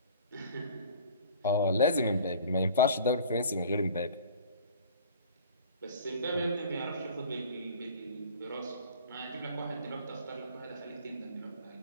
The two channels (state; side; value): inverted; both; correlation -0.46